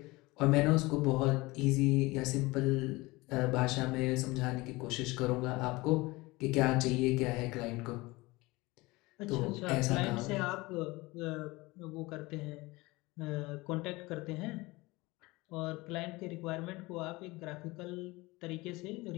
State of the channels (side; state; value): right; quieter; 22.1 dB